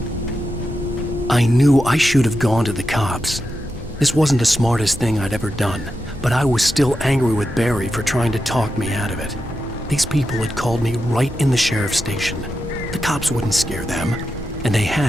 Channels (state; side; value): normal; both; correlation 0.88